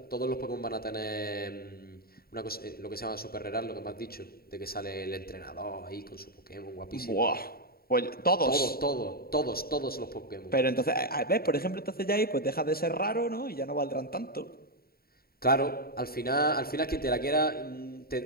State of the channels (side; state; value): right; late; 0.44 ms